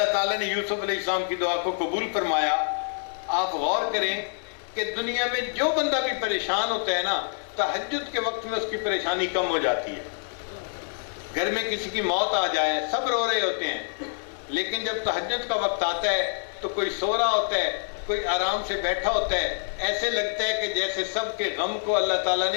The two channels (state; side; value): silent; right; 61 dB below the other